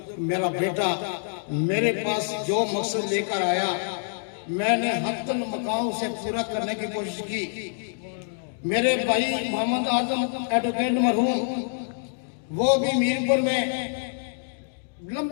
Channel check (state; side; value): silent; right; digital silence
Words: मेरा बेटा मेरे पास जो मकसद लेकर आया, मैंने हत्तन मकाम से पूरा करने की कोशिश की। मेरे भाई मोहम्मद आजम एडवोकेट मरहूम, वो भी मीरपुर में